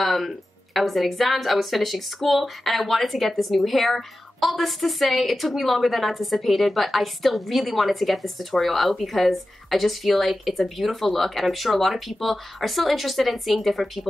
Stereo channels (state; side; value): normal; both; correlation 0.94